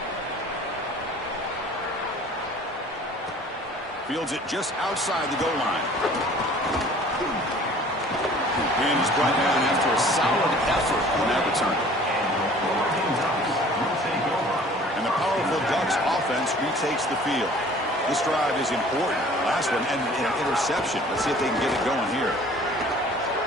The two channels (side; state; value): both; normal; correlation 0.50